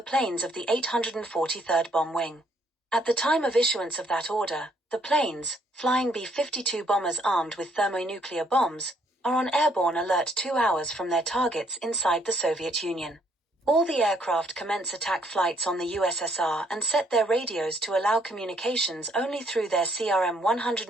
of the 843rd Bomb Wing. At the time of issuance of that order, the planes, flying B-52 bombers armed with thermonuclear bombs, are on airborne alert 2 hours from their targets inside the Soviet Union. All the aircraft commence attack flights on the USSR and set their radios to allow communications only through their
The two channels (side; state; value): both; normal; correlation 0.68